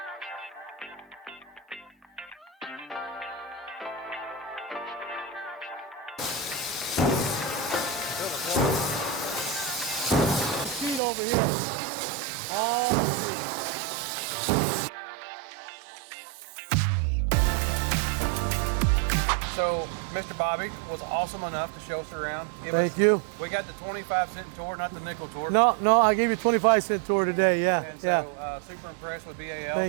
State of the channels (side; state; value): left; drops out; at 11.0 s